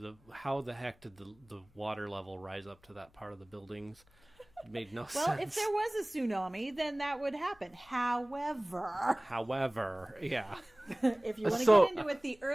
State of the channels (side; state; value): left; noise; hum, 30 dB below the sound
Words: how the heck did the water level rise up to that part of the buildings? It made no Well, sense. if there was a tsunami, then that would happen. However, yeah, If you want to So- get into it, the